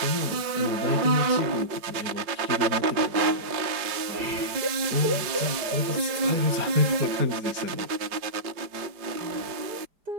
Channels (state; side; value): late; left; 4.9 ms